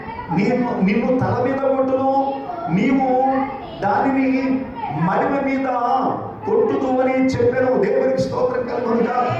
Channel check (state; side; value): identical; both; correlation 1.00